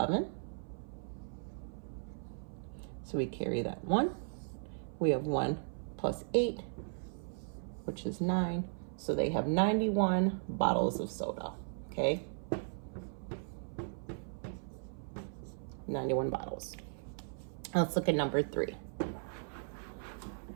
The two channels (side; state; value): left; silent; 53 dB below the other